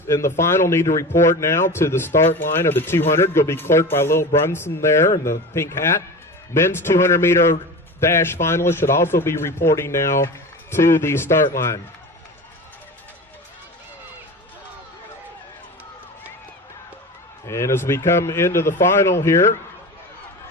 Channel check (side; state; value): both; normal; correlation 0.31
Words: in the final need to report now to the start line of the 200. Will be clerked by Lil Brunson there in the pink hat. Men's 200-meter dash finalists should also be reporting now to the start line. And as we come into the final here,